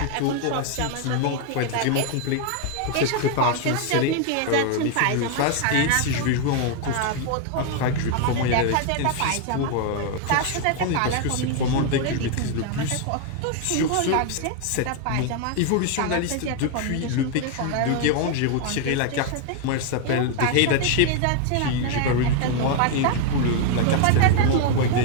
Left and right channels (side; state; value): both; different; correlation 0.01